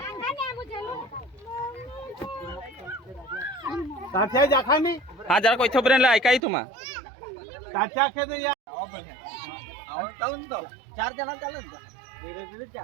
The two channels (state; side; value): drops out; left; at 6.4 s